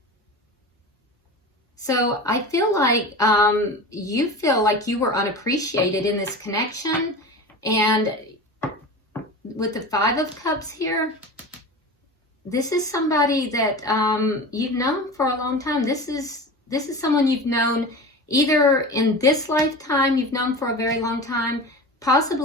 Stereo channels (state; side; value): normal; both; correlation 0.31